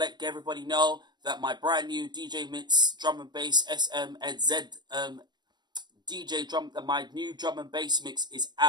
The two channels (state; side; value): late; left; 0.21 ms